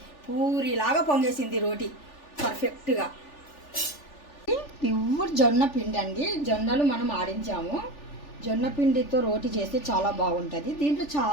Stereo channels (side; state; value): right; late; 3.4 ms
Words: పూరిలాగా పొంగేసింది రోటీ పర్ఫెక్ట్గా. ప్యూర్ జొన్న పిండి అండి. జొన్నలు మనం ఆడించాము. జొన్న పిండితో రోటీ చేస్తే చాలా బాగుంటుంది. దీంట్లో